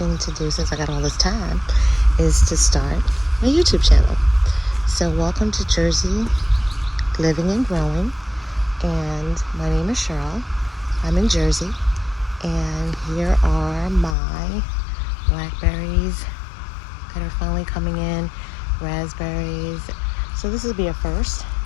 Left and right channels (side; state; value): right; drops out; at 14.2 s